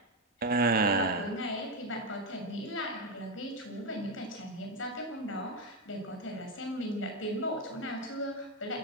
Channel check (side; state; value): both; normal; correlation 0.07